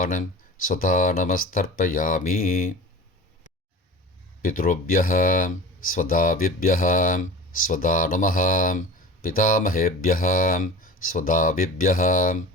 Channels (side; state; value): both; normal; correlation 0.36